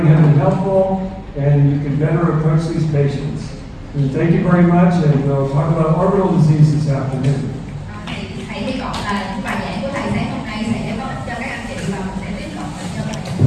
have been helpful and you can better approach these patients. And thank you very much, and we'll talk about orbital disease this afternoon. Thì thầy hy vọng là những bài giảng của thầy sáng hôm nay sẽ có ích cho các anh chị và mình sẽ tiếp cận bệnh nhân và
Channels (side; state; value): both; identical; correlation 1.00